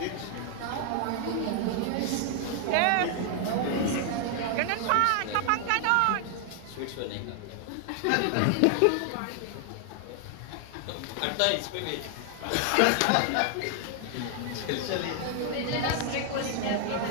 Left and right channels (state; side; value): different; both; correlation 0.00